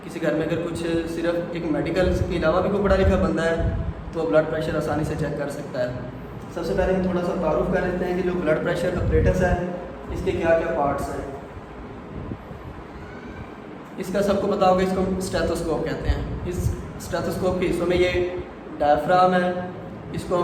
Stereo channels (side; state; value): both; identical; correlation 1.00